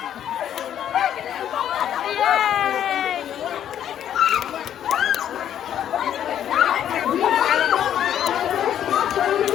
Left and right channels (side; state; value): right; quieter; 10.2 dB